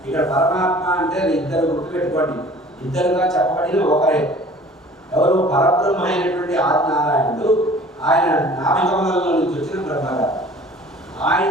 ఇక్కడ పరమాత్మ అంటే ఇద్దరు గుర్తుపెట్టుకోండి, ఇద్దరుగా చెప్పబడిన ఒకరే. ఎవరు? పరబ్రహ్మ అయినటువంటి ఆదినారాయణుడు, ఆయన నామకమలంలో నుంచి వచ్చిన బ్రహ్మగారు.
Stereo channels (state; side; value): normal; both; correlation 0.48